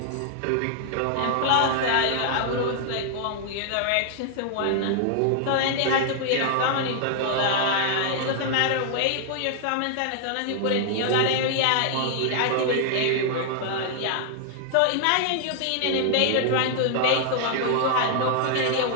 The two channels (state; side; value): different; both; correlation 0.00